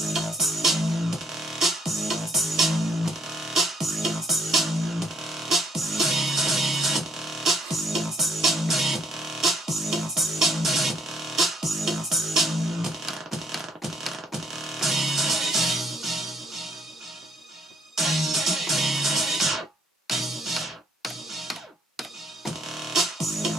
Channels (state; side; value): normal; both; correlation 0.65